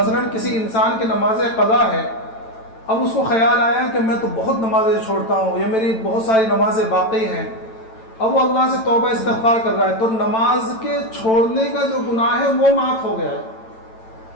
کسی انسان کی نماز قضا ہے، اب اس کو خیال آیا کہ میں تو بہت نمازیں چھوڑتا ہوں، یا میری بہت ساری نمازیں باقی ہیں، اب وہ اللہ سے توبہ استغفار کر رہا ہے، تو نماز کے چھوڑنے کا جو گناہ ہے وہ معاف ہو گیا ہے۔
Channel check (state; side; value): late; right; 9.0 ms